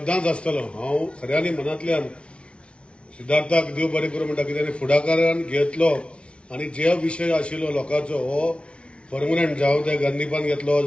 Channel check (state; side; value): late; right; 0.059 ms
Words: आसतलो। हांव खऱ्यांनी मनांतल्यान सिद्धार्थाक देव बरें करूं म्हणटा, कित्याक फुडाकारान घेतलो आनी जे विशय आशिल्लो लोकांचो हो परमनंट, जावं ते गंदीपान घेतलो